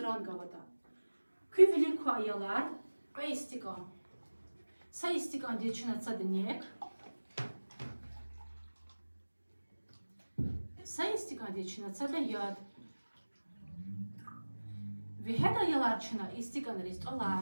gavada. Küvilik ko ayalar ve istikan. Sa istikan diye çınatsa dinleyek. Sa istikan diye çınatsa da yad. Ve hed ayalar çına istikan ristolar.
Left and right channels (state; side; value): inverted; both; correlation -1.00